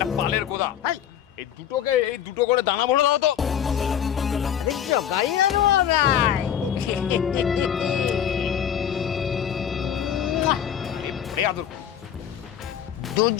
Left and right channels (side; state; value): right; quieter; 9.4 dB